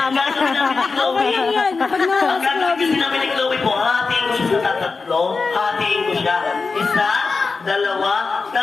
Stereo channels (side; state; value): right; quieter; 4.4 dB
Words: ka. Okay lang yan. Ang gagawin kasi namin ni Chloe po, hatiin ko siya sa tatlo. Hatiin ko siya. Isa, dalawa,